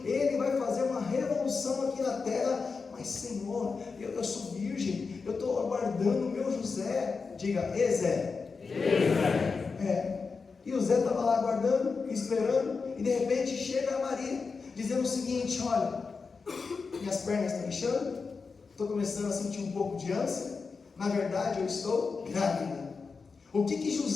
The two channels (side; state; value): right; quieter; 4.8 dB